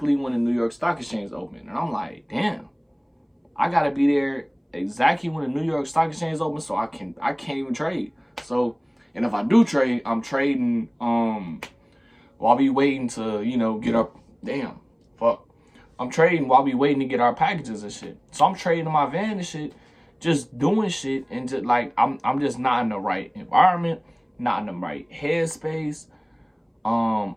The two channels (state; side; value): identical; both; correlation 1.00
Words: when the New York Stock Exchange opened. And I'm like, damn, I got to be there exactly when the New York Stock Exchange open so I can't even trade. So, and if I do trade, I'm trading while we waiting to, get up. Damn, fuck. I'm trading while we waiting to get our packages and shit. So I'm trading in my van and shit, just doing shit, and just like I'm just not in the right environment, not in the right headspace. I'm